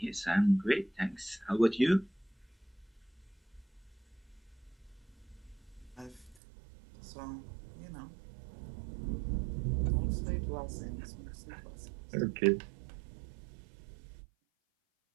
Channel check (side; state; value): left; drops out; at 6.4 s